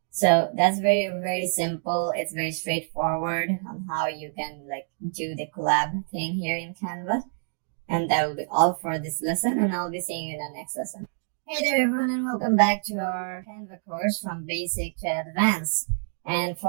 So that's very, very simple. It's very straightforward on how you can do the collab thing here in Canva. And that will be all for this lesson, and I'll be seeing you in the next lesson. Hey there everyone, and welcome back to our Canva course from basic to advanced. And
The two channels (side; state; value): left; silent; digital silence